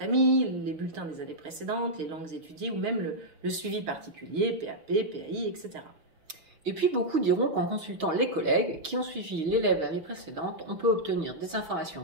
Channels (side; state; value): left; late; 6.5 ms